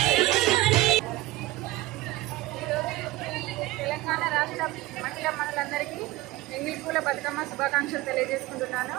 ఎంగిలిపూల బతుకమ్మ శుభాకాంక్షలు తెలియజేసుకుంటున్నాను.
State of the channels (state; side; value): quieter; left; 17.8 dB